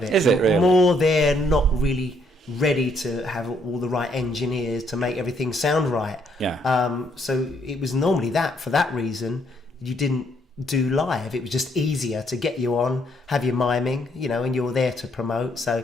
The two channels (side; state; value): both; normal; correlation 0.70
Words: it. Is it really? More they're not really ready to have all the right engineers to make everything sound right. So it was normally that for that reason you didn't do live. It was just easier to get you on, have you miming, and you're there to promote. So